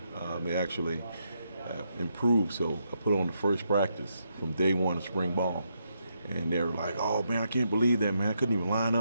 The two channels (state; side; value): inverted; both; correlation -0.80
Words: they actually improved. So I put on the first practice from day one of spring ball, and they're like, "Oh man, I can't believe that, man! I couldn't even line